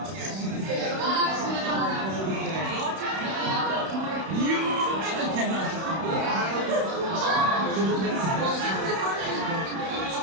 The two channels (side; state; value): left; late; 31 ms